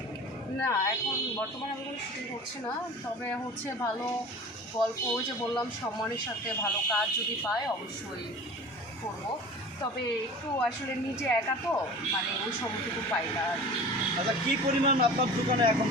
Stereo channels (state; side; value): normal; both; correlation 0.39